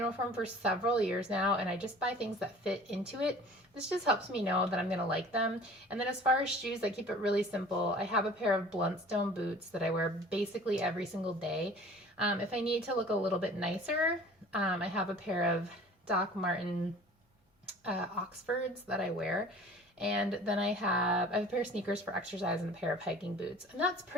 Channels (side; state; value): both; normal; correlation 0.46